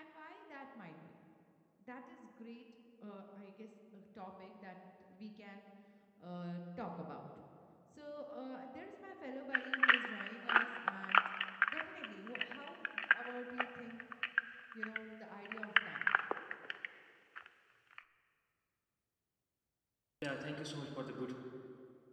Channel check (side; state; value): both; identical; correlation 1.00